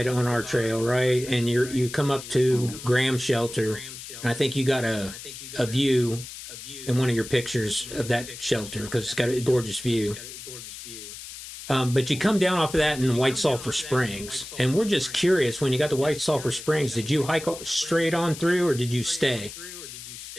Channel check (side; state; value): left; noise; hiss, 12 dB below the sound